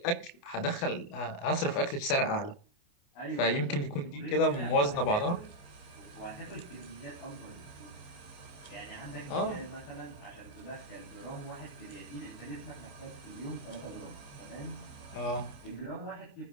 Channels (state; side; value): late; right; 28 ms